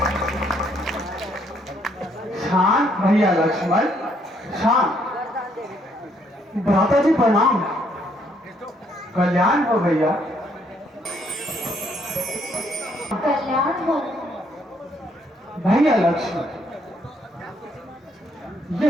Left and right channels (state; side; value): normal; both; correlation 0.69